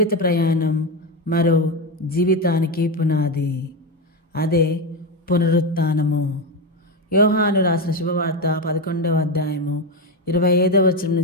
ప్రయాణం మరో జీవితానికి పునాది, అదే పునరుత్థానము. యోహాను రాసిన శుభవార్త 11వ అధ్యాయము 25వ వచనం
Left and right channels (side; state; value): both; normal; correlation 0.13